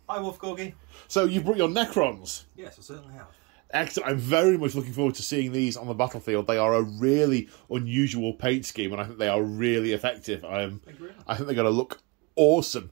Hi, Wolf Corgi. So you've brought your Necrons. Yes, I certainly have. Excellent. I'm very much looking forward to seeing these on the battlefield. They are a really unusual paint scheme, and I think they are really effective. I think they're going to look awesome.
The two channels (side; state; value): left; quieter; 26.9 dB